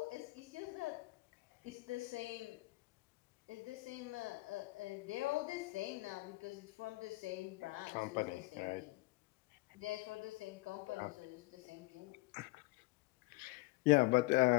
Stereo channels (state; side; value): quieter; right; 23.1 dB